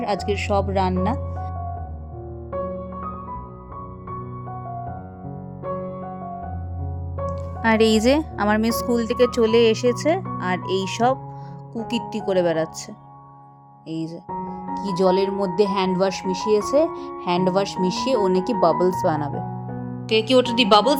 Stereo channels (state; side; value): identical; both; correlation 1.00